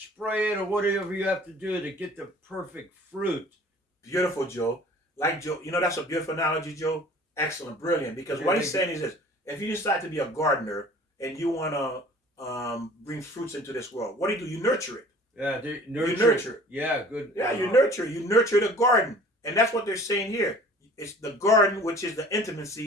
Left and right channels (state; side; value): normal; both; correlation 0.48